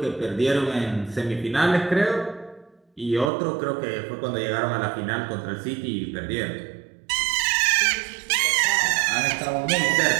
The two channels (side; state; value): left; drops out; at 3.3 s